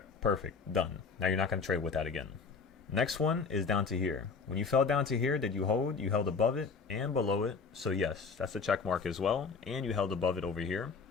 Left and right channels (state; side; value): quieter; right; 5.1 dB